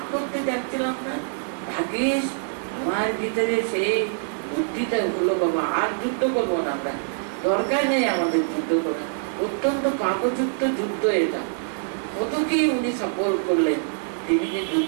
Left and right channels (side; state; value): left; silent; 62 dB below the other